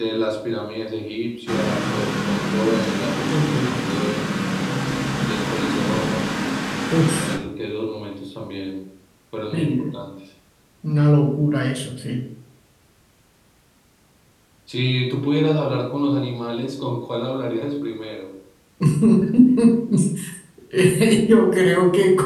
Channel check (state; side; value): identical; both; correlation 1.00